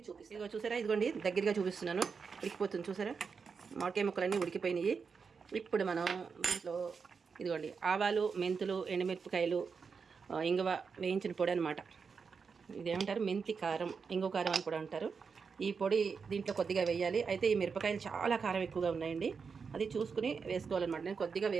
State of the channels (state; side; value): quieter; left; 5.6 dB